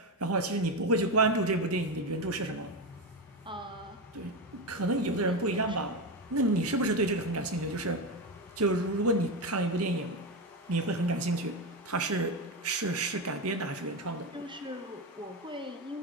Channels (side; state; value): both; normal; correlation 0.14